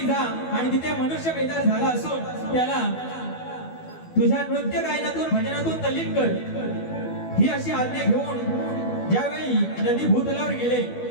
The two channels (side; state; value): right; late; 12 ms